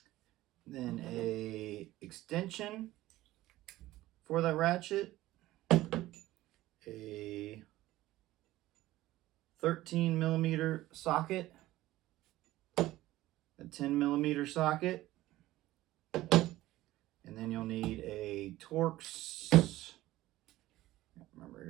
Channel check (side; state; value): left; quieter; 16.3 dB